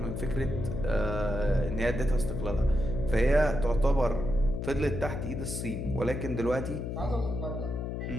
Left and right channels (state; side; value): noise; left; hum, 4 dB below the sound